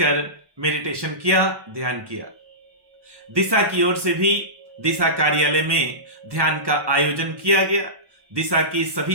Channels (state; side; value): late; left; 1.1 ms